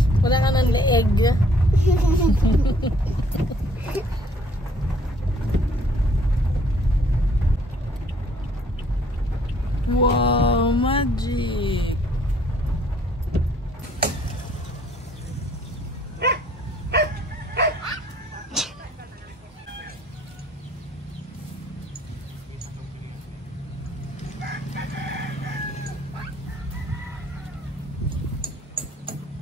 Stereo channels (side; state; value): both; normal; correlation 0.61